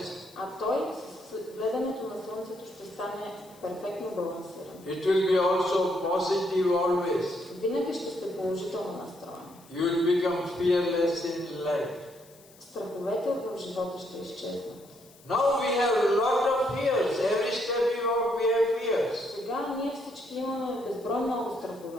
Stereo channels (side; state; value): left; noise; hiss, 25 dB below the sound